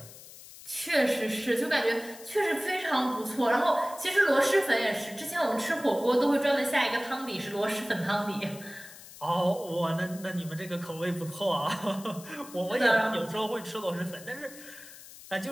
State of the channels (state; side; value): noise; left; hiss, 17 dB below the sound